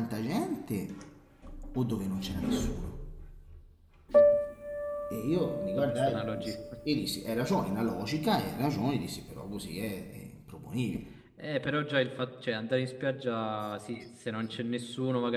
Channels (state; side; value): identical; both; correlation 1.00